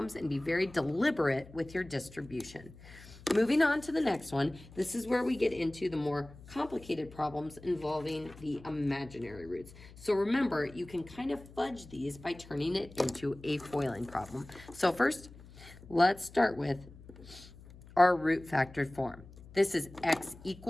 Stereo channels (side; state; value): left; noise; hum, 19 dB below the sound